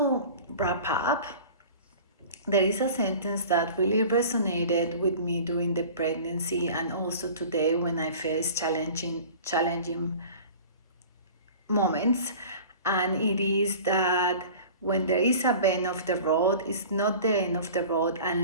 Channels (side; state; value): both; inverted; correlation -0.41